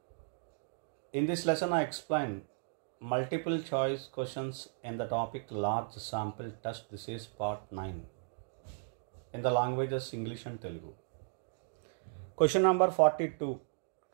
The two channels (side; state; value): left; silent; digital silence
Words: In this lesson I explain multiple choice questions in the topic large sample test. This is part 9 in the languages English and Telugu. Question number 42.